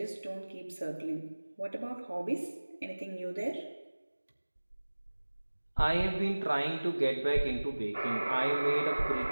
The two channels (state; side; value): inverted; both; correlation -1.00